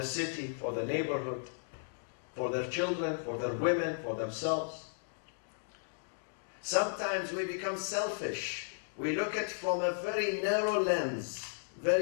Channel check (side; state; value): right; silent; digital silence